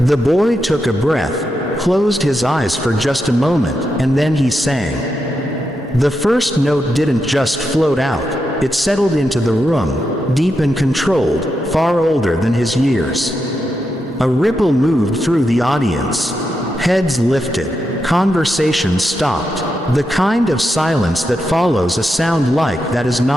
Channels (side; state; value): both; normal; correlation 0.85